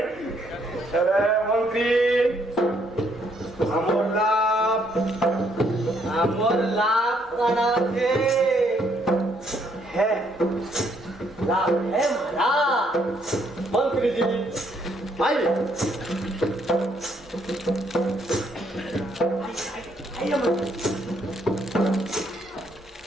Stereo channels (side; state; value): both; normal; correlation 0.70